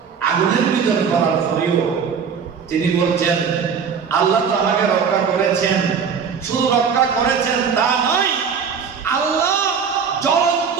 আগুনের ভিতর পড়ার পরেও তিনি বলছেন, আল্লাহ তো আমাকে রক্ষা করেছেন, শুধু রক্ষা করেছেন তা নয়, আল্লাহ জ্বলন্ত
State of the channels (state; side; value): quieter; left; 6.5 dB